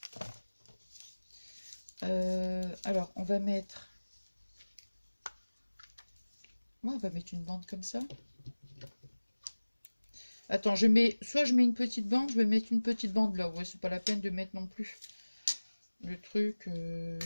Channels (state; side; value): inverted; both; correlation -1.00